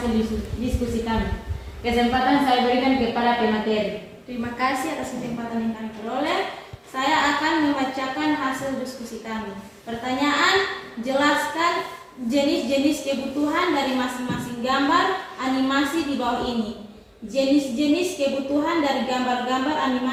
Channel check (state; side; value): identical; both; correlation 1.00